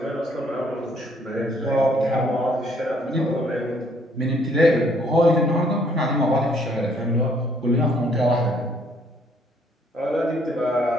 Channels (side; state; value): both; normal; correlation 0.65